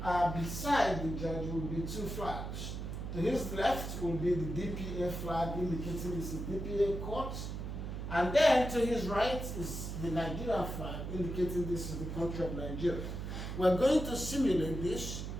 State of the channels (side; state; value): right; noise; hum, 5 dB below the sound